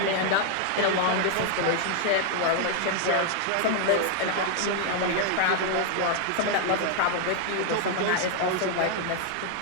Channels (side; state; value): both; different; correlation 0.00